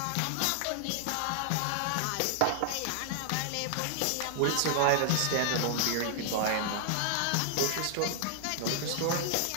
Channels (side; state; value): both; different; correlation 0.00